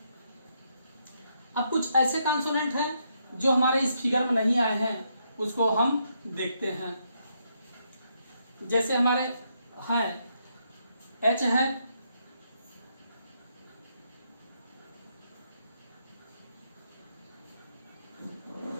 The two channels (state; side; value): inverted; both; correlation -0.77